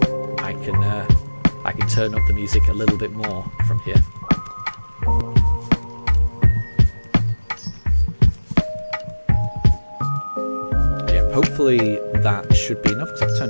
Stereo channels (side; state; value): both; inverted; correlation -1.00